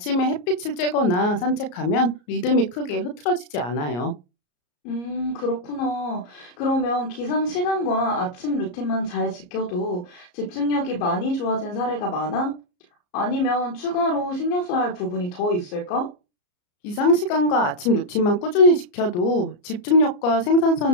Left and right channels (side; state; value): right; late; 34 ms